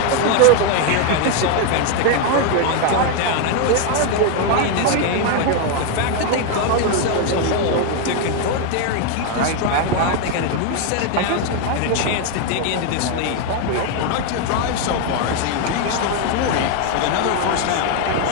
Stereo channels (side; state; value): both; different; correlation 0.01